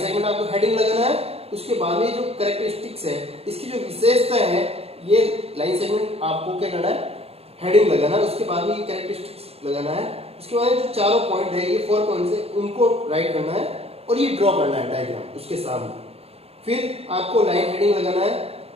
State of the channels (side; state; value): left; late; 0.29 ms